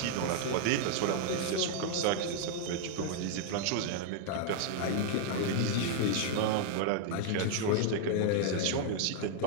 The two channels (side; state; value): both; different; correlation 0.00